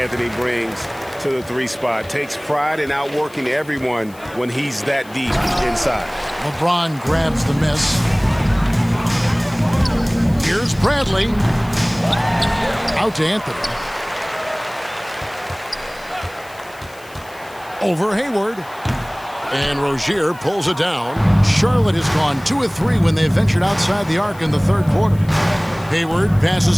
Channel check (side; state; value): left; noise; hiss, 24 dB below the sound